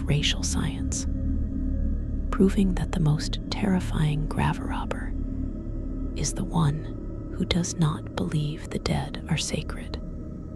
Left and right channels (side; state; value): both; identical; correlation 1.00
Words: racial science, proving that the most terrifying graverobber is the one who does not believe the dead are sacred,